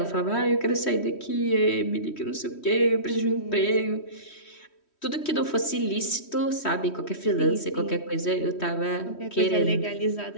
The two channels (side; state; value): right; late; 3.1 ms